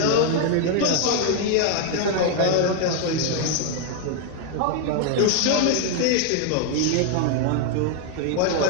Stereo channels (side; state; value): both; different; correlation 0.00